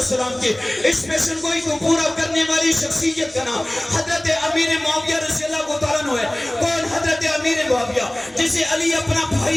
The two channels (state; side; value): noise; left; hum, 30 dB below the sound